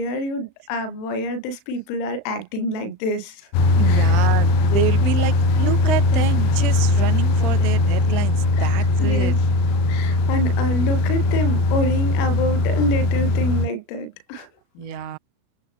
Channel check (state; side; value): late; right; 35 ms